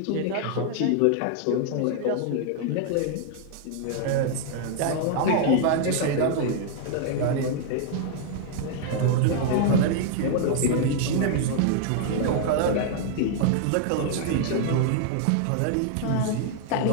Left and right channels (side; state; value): both; different; correlation 0.00